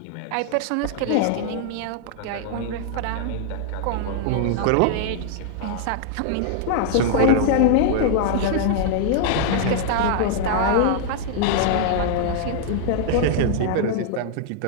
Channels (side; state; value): both; different; correlation -0.01